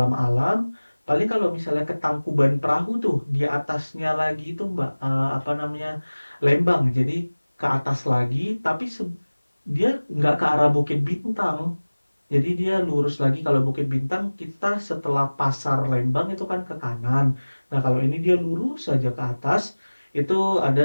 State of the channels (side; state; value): both; inverted; correlation -1.00